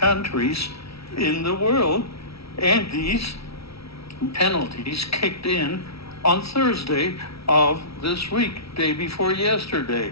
in the world. And these penalties kicked in on Thursday of this week, day before yesterday.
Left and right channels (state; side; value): late; right; 0.76 ms